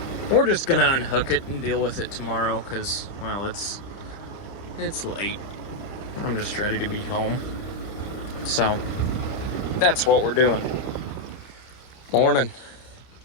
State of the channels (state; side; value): late; right; 30 ms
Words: we're just gonna unhook it and deal with it tomorrow because, well, it's late. I'm just ready to be home. So, that's what we're doing. Morning.